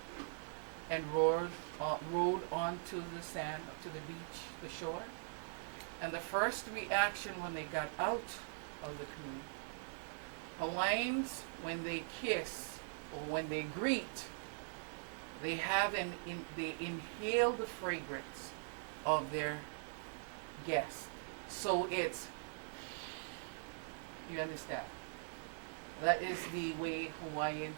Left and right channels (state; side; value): silent; left; digital silence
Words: and rowed onto the sand, to the beach, the shore, and the first reaction when they got out of the canoe, Hawaiians, when they kiss or when they greet, they they inhale the fragrance of their guest. So it's, you understand? That is the way